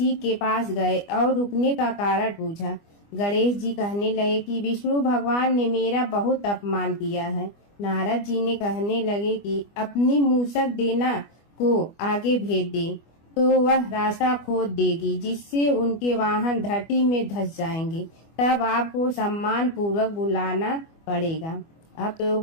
के पास गए और रुकने का कारण पूछा। गणेश जी कहने लगे कि विष्णु भगवान ने मेरा बहुत अपमान किया है। नारद जी ने कहने लगे कि अपनी मूसक देना को आगे भेज दे तो वह रास्ता खोद देगी, जिससे उनके वाहन धरती में धंस जाएंगे। तब आपको सम्मान पूर्वक बुलाना पड़ेगा। अब तो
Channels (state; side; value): late; right; 25 ms